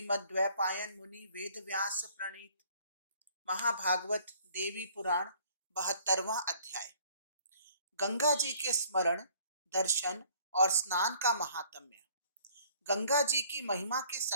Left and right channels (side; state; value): both; inverted; correlation -0.57